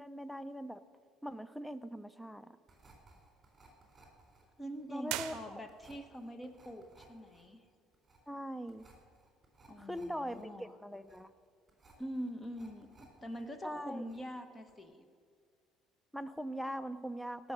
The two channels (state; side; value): normal; both; correlation 0.85